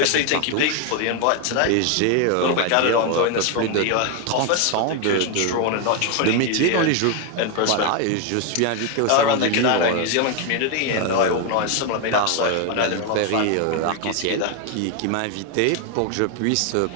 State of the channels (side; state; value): both; different; correlation 0.01